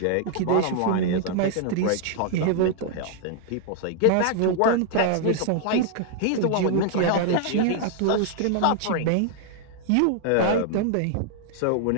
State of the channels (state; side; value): different; both; correlation 0.00